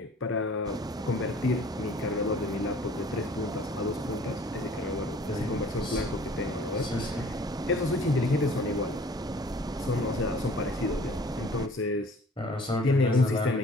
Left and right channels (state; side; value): normal; both; correlation 0.51